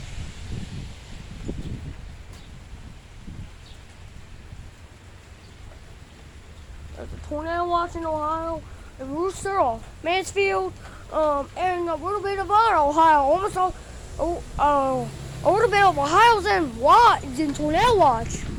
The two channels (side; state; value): both; identical; correlation 1.00